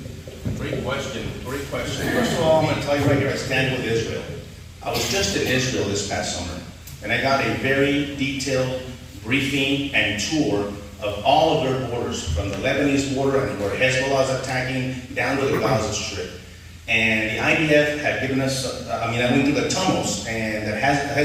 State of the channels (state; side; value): identical; both; correlation 1.00